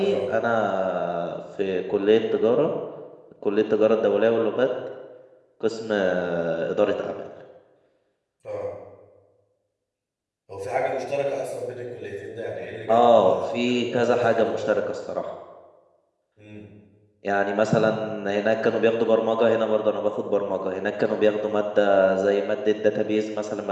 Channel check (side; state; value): both; identical; correlation 1.00